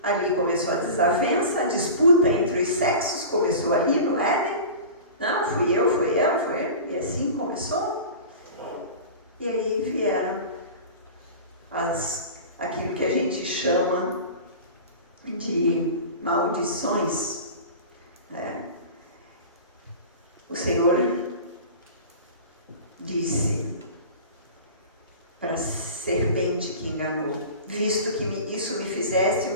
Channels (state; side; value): inverted; both; correlation -0.35